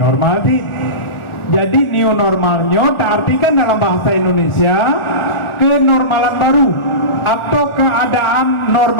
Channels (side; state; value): right; late; 1.4 ms